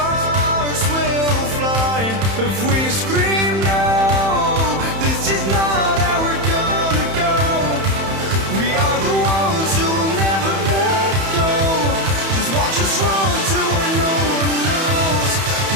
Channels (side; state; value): left; late; 31 ms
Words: will fly if we scream no. This is not how we're gonna go. We are the ones who will never let go. Just watch us run to where no one knows.